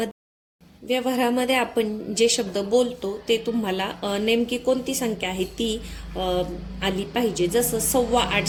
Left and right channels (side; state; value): both; identical; correlation 1.00